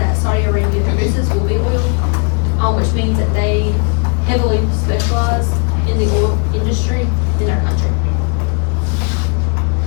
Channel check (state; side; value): quieter; right; 36.9 dB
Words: Saudi Arabia produces will be oil, which means that they heavily specialize in the oil industry in their country.